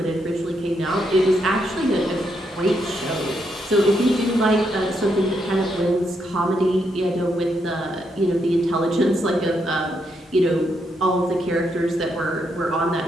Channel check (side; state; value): both; normal; correlation 0.79